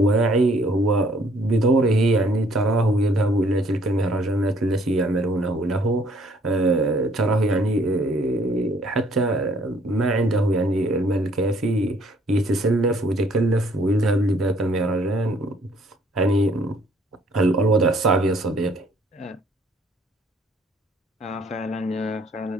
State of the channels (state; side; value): normal; both; correlation 0.62